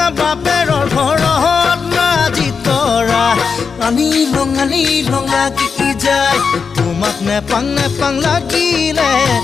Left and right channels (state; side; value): quieter; right; 5.6 dB